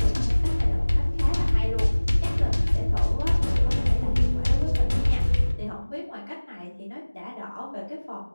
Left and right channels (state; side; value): inverted; both; correlation -1.00